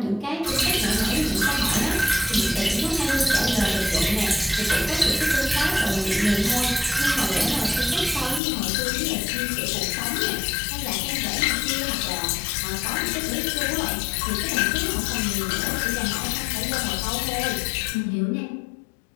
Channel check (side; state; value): right; drops out; at 8.4 s